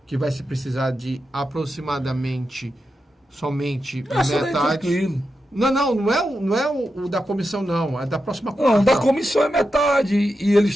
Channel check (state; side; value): normal; both; correlation 0.89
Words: que vai se precisar de aproximadamente somente metade... Não é o da comissão, não. É da próxima quarta. Não, da comissão é metade. E